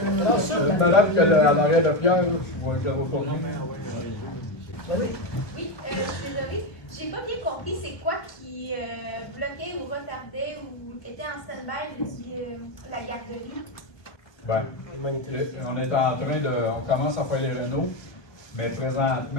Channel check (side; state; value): right; late; 1.5 ms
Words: Madame qui a l'arrêt de Pierre, je vais pas bien. Oui, je suis désolée. J'ai pas bien compris c'est quoi qui bloquait ou retardait ou était en stand-by la garderie. Ben, on est en train de. On commence à faire les rénaux, mais